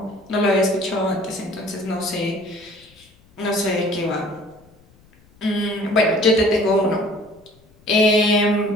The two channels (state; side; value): noise; left; rumble, 30 dB below the sound